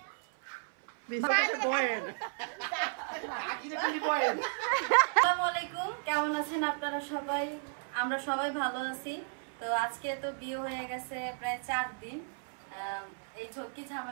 আসসালামু আলাইকুম, কেমন আছেন আপনারা সবাই? আমরা সবাই ভালো আছি। তো আজকে তো বিয়ে হয়ে গেছে প্রায় 4 দিন। এই ঝক্কি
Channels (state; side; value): silent; left; 55 dB below the other